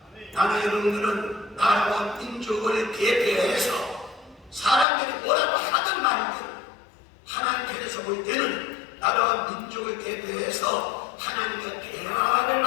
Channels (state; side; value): drops out; right; at 4.9 s